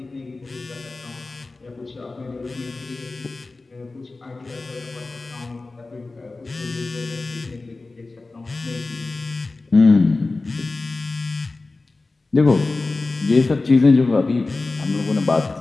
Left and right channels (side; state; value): right; quieter; 3.5 dB